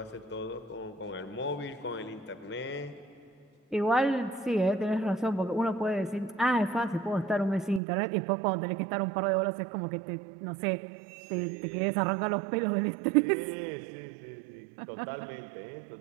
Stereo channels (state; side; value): drops out; left; at 7.8 s